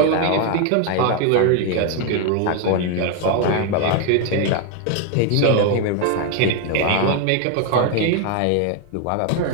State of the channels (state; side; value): different; both; correlation 0.01